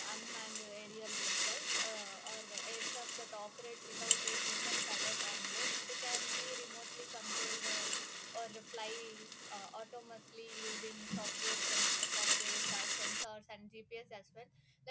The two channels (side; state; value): both; identical; correlation 1.00